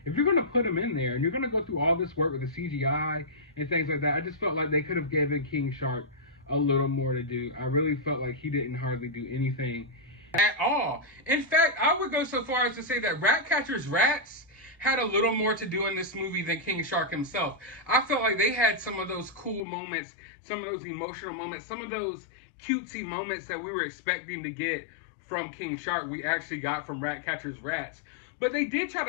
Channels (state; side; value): drops out; right; at 19.6 s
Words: if you're going to put him in there, and you're going to go through all this work with the CGI and things like that, I just felt like they could have given King Shark a little more to do. I really felt like he didn't hardly do anything at all. In fact, I would go so far as to say that Ratcatcher's rats had a little more to do in this movie than King Shark himself. I felt like they had some of those cool moments, some of those emotional moments, some of those cutesy moments that we were expecting to get from King Shark, we actually got from Ratcatcher's rats. But they did try